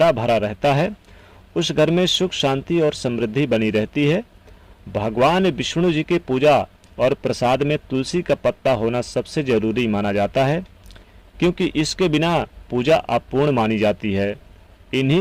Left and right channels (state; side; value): identical; both; correlation 1.00